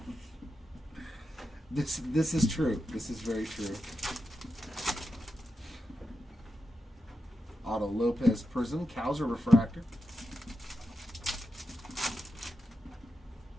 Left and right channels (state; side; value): normal; both; correlation 0.88